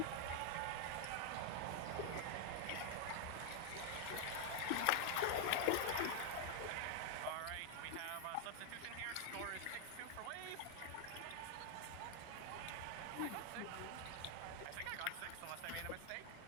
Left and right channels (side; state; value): both; different; correlation 0.00